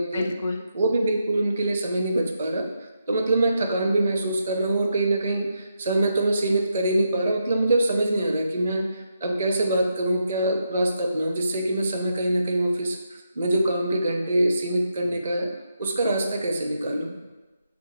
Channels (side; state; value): both; inverted; correlation -0.82